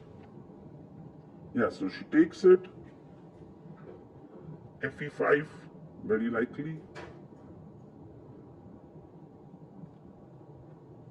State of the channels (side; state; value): both; identical; correlation 1.00